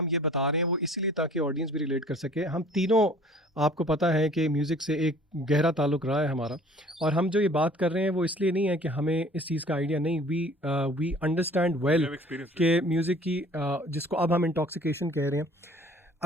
ये बता रहे हैं वो इसीलिए ताकि ऑडियंस भी रिलेट कर सके। हम तीनों, आपको पता है कि म्यूज़िक से एक गहरा ताल्लुक़ रहा है हमारा, और हम जो ये बात कर रहे हैं वो इसलिए नहीं है कि हमें इस चीज़ का आइडिया नहीं, वी अंडरस्टैंड वेल कि म्यूज़िक की जिसको अब हम इंटॉक्सिकेशन कह रहे हैं।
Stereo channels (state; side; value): normal; both; correlation 0.51